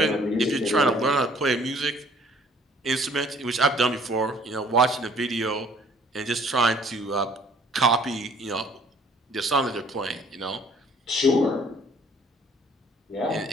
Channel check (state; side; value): normal; both; correlation 0.57